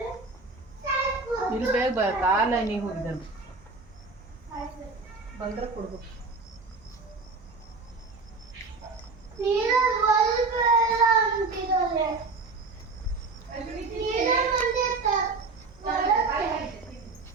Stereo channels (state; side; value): quieter; left; 4.0 dB